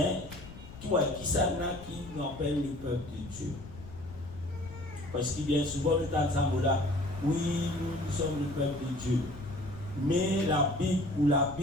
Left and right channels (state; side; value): noise; left; rumble, 15 dB below the sound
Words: qui nous appelle le peuple de Dieu. Parce que bien souvent, nous entendons là, oui, nous sommes le peuple de Dieu. Mais la